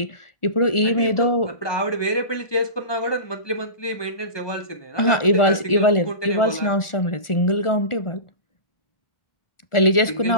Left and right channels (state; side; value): late; right; 1.4 ms